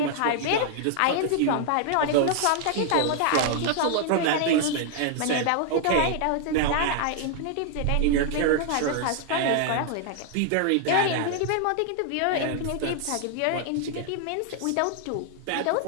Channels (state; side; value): different; both; correlation 0.00